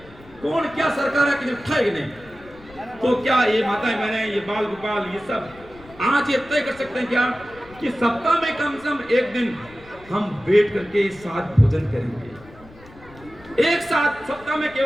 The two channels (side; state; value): left; noise; rumble, 22 dB below the sound